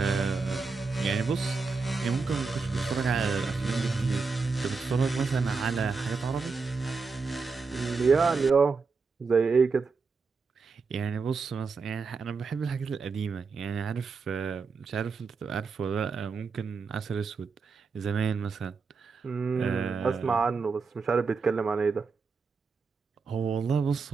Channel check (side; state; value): left; quieter; 4.7 dB